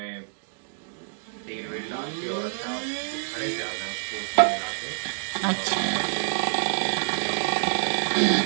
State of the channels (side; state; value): left; silent; digital silence